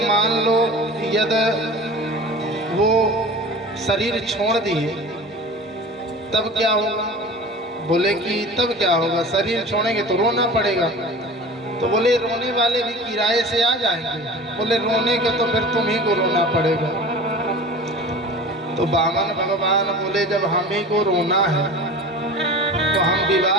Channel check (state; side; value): normal; both; correlation 0.37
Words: मान लो यद वो शरीर छोड़ दिए तब क्या होगा? बोले कि तब क्या होगा, शरीर छोड़ेंगे तो रोना पड़ेगा। तो बोले रोने वाले भी किराए से आ जाएंगे। बोले रोने का तो फिर तुम ही को रोना पड़ेगा। तो वामन भगवान बोले जब हम ही को रोना है तो हम